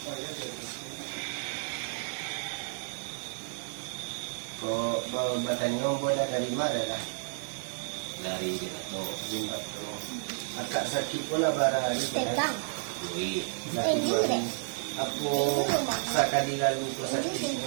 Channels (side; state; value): left; silent; 57 dB below the other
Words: Kau bertanya bola dari mana lah? Dari Jinato. Akak sakit pula barang ni. Tegang. Kui. Aku sakadi lalu ko sakit